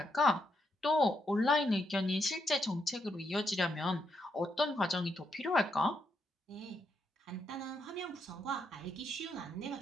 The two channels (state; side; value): normal; both; correlation 0.79